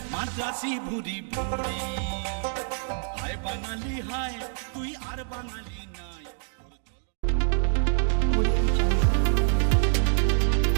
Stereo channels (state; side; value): silent; left; 60 dB below the other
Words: মাদ্রাসি ভুরি ভুরি। হায় বাঙালি হায় তুই আর বাঙালি নাই।